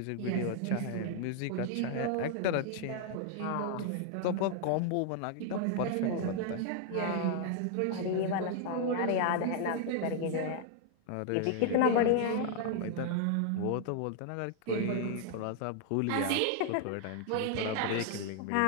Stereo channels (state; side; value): different; both; correlation 0.00